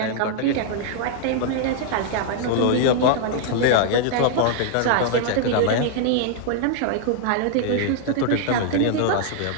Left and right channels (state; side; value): different; both; correlation -0.01